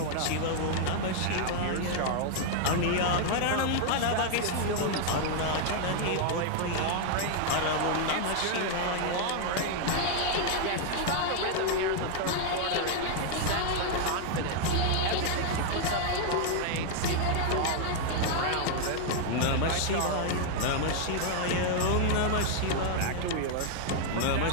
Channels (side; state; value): both; different; correlation 0.00